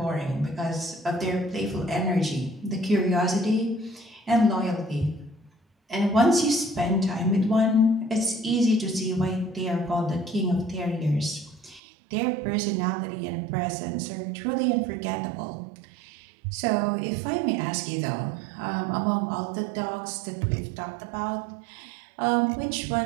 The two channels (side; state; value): left; drops out; at 11.8 s